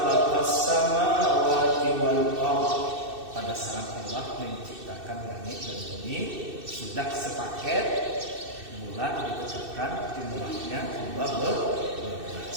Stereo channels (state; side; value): late; left; 2.6 ms